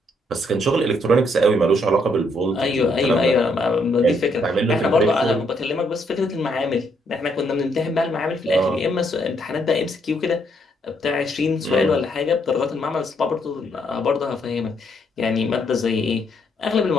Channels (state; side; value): normal; both; correlation 0.73